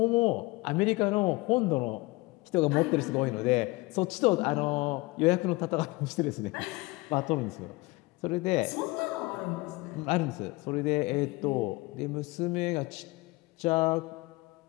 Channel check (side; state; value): right; quieter; 23.0 dB